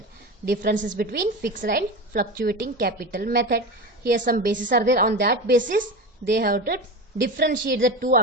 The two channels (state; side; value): normal; both; correlation 0.25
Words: Differences between fixed and fluctuating capital method. Here some bases are there, on that basis they have to differentiate the two